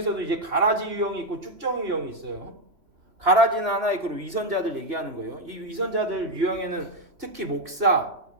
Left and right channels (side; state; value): left; late; 3.0 ms